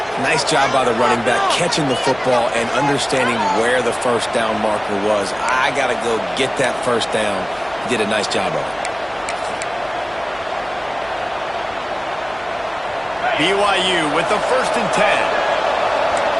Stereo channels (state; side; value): noise; left; hum, 26 dB below the sound